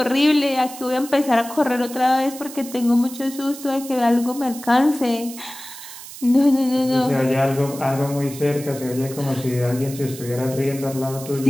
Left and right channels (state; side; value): noise; right; hiss, 14 dB below the sound